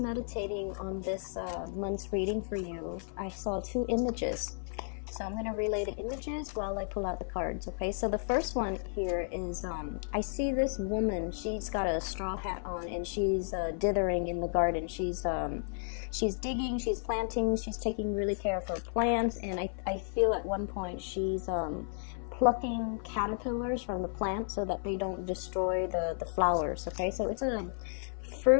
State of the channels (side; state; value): right; silent; 56 dB below the other